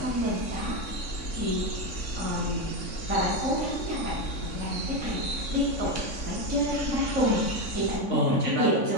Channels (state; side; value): late; right; 3.6 ms